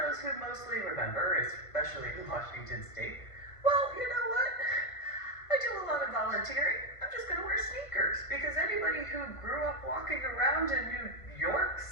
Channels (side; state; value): right; late; 1.5 ms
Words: who mostly remember, especially in Washington State, well, you know what? I do a lot of volunteering. I'm just going to wear sneakers. Because anybody who grew up walking around in New York